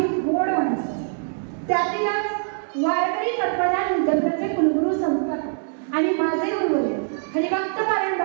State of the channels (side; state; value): left; silent; digital silence